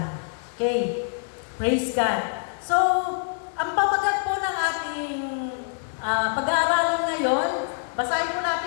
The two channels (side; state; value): right; silent; digital silence